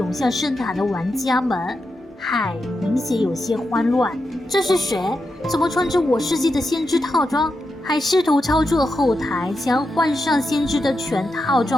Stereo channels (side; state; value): both; normal; correlation 0.87